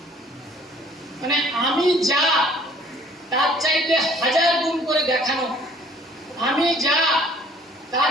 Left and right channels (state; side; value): normal; both; correlation 0.56